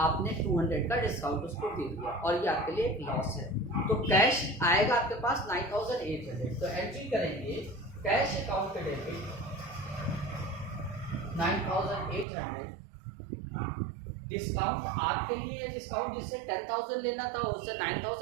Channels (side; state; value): left; drops out; at 12.2 s